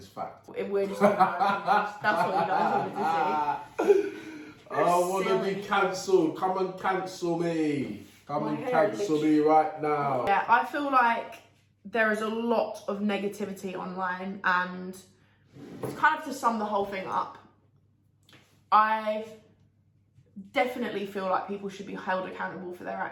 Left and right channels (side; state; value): both; identical; correlation 1.00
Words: fact. We're just talking about opinions. That's what you guys wanted to see. I want to be cancelled. Come and cancel me. Come and cancel me right now. Yeah, I feel like there is a lot of negativity online, and kind of to sum the whole thing up, I definitely feel like people should be held accountable for their